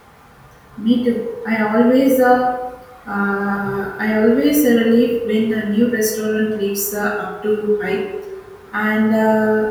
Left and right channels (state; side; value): identical; both; correlation 1.00